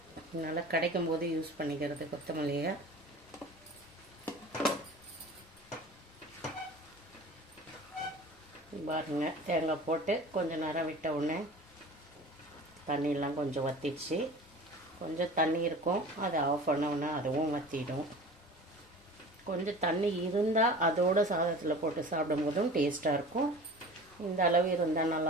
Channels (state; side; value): normal; both; correlation 0.39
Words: அதனால் கிடைக்கும் போது யூஸ் பண்ணிக்கிறது கொத்தமல்லியை. பாருங்க, தேங்காய் போட்டு கொஞ்சம் நேரம் விட்ட உடனே தண்ணியெல்லாம் கொஞ்சம் வற்றிடுச்சு. கொஞ்சம் தண்ணி இருக்கும், அதை ஆஃப் பண்ணோன்னா அதுவும் வற்றிடும். கொஞ்சம் தண்ணி இருந்தால் அதோட சாதத்தில் போட்டு சாப்பிடும்போதும் டேஸ்ட்டாக இருக்கும். இந்த அளவு இருந்தால்